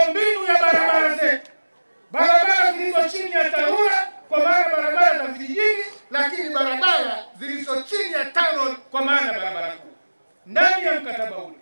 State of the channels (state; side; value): inverted; both; correlation -1.00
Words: ya barabara zetu, barabara zilizo chini ya TARURA kwa maana barabara za vijijini, lakini barabara